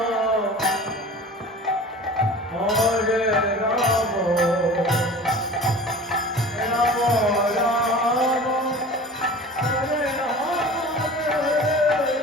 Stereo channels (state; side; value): normal; both; correlation 0.39